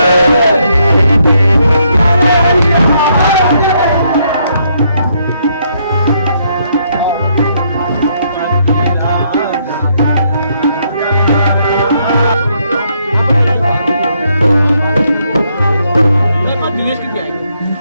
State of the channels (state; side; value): inverted; both; correlation -0.73